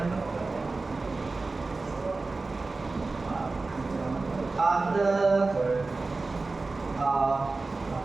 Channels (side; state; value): left; quieter; 3.6 dB